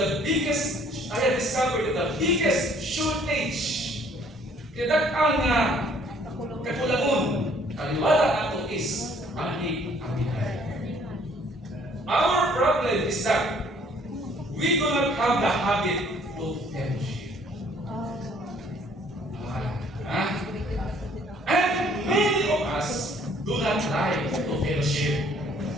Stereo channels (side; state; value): both; normal; correlation 0.60